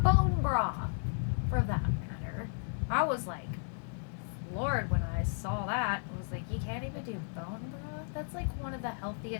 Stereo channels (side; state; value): right; silent; 55 dB below the other